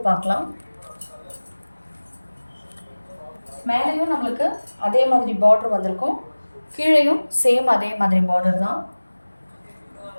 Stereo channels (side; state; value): both; inverted; correlation -1.00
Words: பார்க்கலாம். மேலேயும் நம்மளுக்கு அதே மாதிரி பார்டர் வந்திருக்கும். கீழேயும் சேம் அதே மாதிரி பார்டர் தான்.